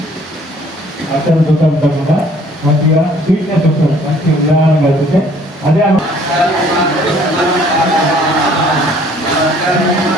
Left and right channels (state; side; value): normal; both; correlation 0.57